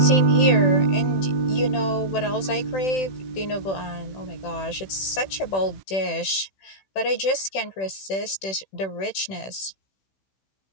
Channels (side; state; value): right; late; 16 ms